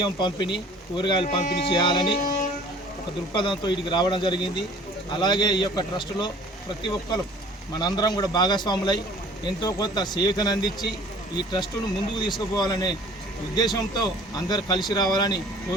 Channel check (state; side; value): normal; both; correlation 0.50